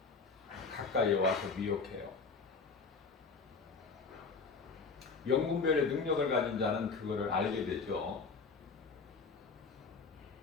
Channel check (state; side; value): quieter; right; 4.7 dB